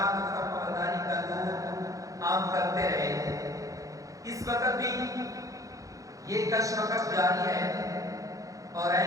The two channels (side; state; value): left; late; 0.16 ms